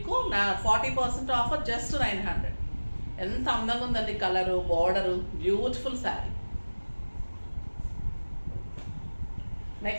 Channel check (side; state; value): both; inverted; correlation -1.00